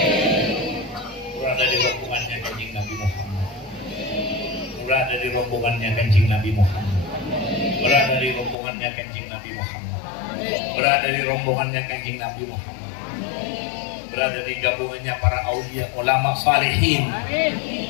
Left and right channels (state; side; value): drops out; right; at 8.6 s